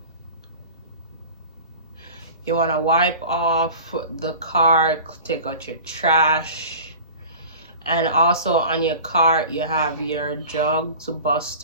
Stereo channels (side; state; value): both; inverted; correlation -0.39